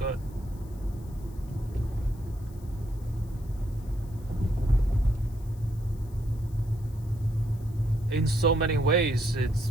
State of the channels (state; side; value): noise; left; hiss, 27 dB below the sound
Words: In so many ways,